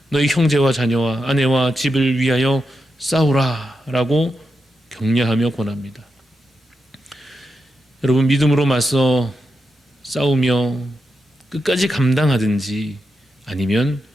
너희 형제와 자녀와 아내와 집을 위하여 싸우라 라고 격려하며 권합니다. 여러분, 믿음으로 맞서 싸우며 끝까지 감당하든지 아니면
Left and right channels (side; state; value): both; normal; correlation 0.87